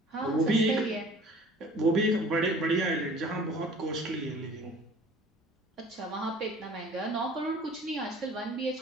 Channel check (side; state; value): both; normal; correlation 0.49